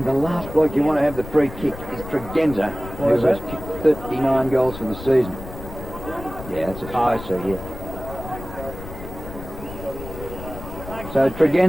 the last bloke you want to have the free kick is Tregenza, who has kicked 39 goals for the season. Yeah, that's a I see, yeah. So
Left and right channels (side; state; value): left; noise; rumble, 12 dB below the sound